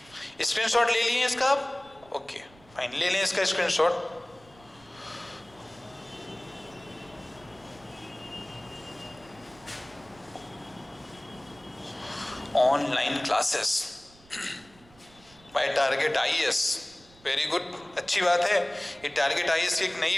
स्क्रीनशॉट ले लिए इसका आप, ओके फाइन, ले लें इसका screenshot. Online classes bye target IAS, very good, अच्छी बात है। ये टारगेट आईएएस की एक नई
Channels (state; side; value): noise; right; rumble, 26 dB below the sound